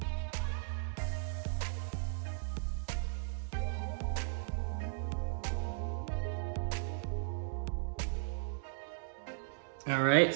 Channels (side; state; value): left; silent; digital silence